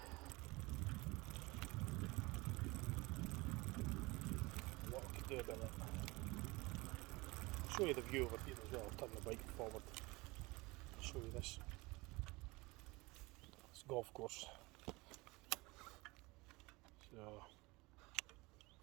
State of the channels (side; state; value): left; quieter; 23.5 dB